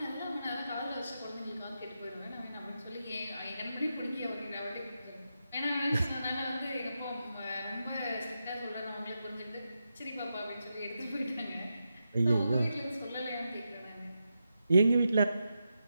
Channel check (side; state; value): both; inverted; correlation -0.87